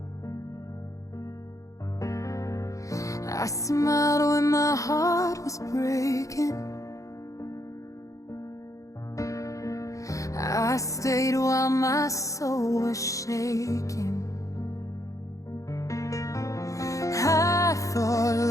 I smiled when my heart was breaking. I stayed while my soul was shaking. I thought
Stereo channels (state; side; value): late; right; 0.16 ms